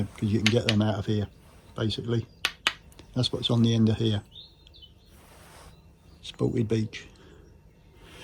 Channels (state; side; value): identical; both; correlation 1.00